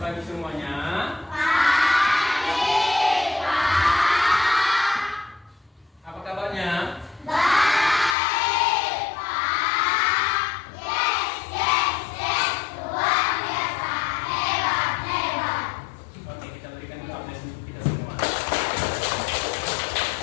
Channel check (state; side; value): drops out; right; at 8.2 s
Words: pagi semuanya. Pagi, Pak. Apa kabarnya? Baik, Pak. Yes. Luar biasa. Hebat. Oke, kita berikan dulu update untuk kita semua.